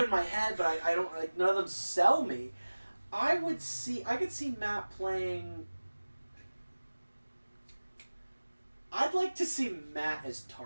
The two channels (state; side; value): inverted; both; correlation -1.00